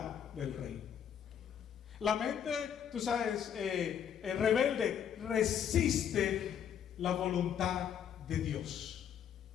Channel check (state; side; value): quieter; right; 8.7 dB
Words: del rey. La mente, tú sabes, rebelde resiste la voluntad de Dios.